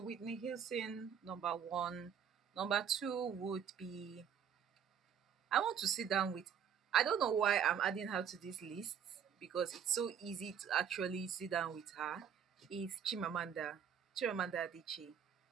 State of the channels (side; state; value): left; quieter; 8.1 dB